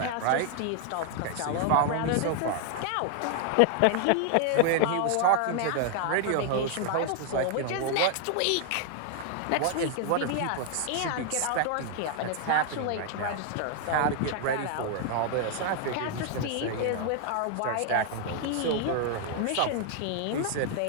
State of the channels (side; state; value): both; different; correlation 0.00